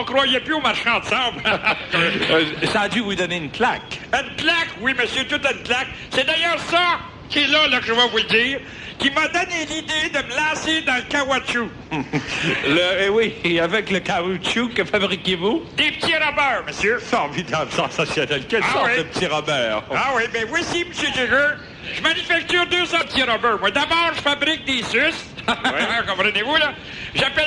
croyait plus aux marchands de sable. Ça a dû vous donner une claque. Une claque, oui, monsieur, toute une claque. C'est d'ailleurs ça qui est là, que je vais vous le dire, qui m'a donné l'idée de me lancer dans le caoutchouc. Oui, et avec le caoutchouc, que fabriquez-vous? Des petits robbers, monsieur. Formidable, sensationnel. Quelle Ah sorte oui. de petit Robert? Ah oui, ben voici, monsieur Jigger. Je manufacture 200 petits robbers. Moi, d'abord, je fabrique des suces. Comprenez-vous, là?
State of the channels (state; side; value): identical; both; correlation 1.00